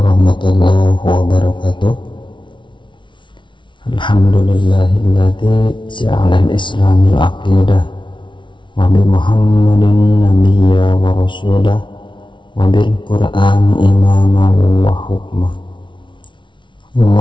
wabarakatuh. Alhamdulillahilladzi ja'ala al-islamil aqidah wa bi Muhammadin nabiyya wa rasulah wa bil Qur'ani imaman wa hukmah.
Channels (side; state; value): right; late; 0.24 ms